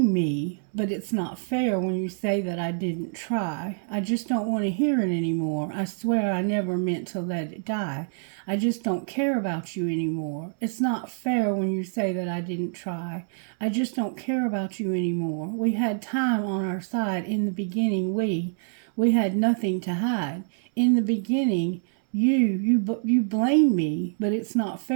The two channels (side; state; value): left; silent; digital silence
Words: me, but it's not fair when you say that I didn't try. I just don't want to hear it anymore. I swear I never meant to let it die. I just don't care about you anymore. It's not fair when you say that I didn't try. I just don't care about you anymore. We had time on our side in the beginning. We had nothing to hide. In the beginning, you blame me, but it's not